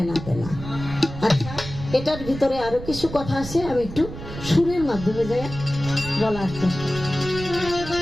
দেনা। আচ্ছা, এটার ভিতরে আরো কিছু কথা আছে, আমি একটু সুরের মাধ্যমে যাই বলার চেষ্টা।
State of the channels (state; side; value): noise; right; rumble, 11 dB below the sound